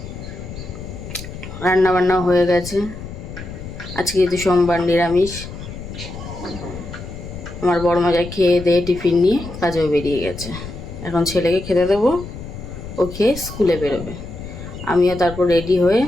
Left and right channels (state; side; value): noise; left; rumble, 11 dB below the sound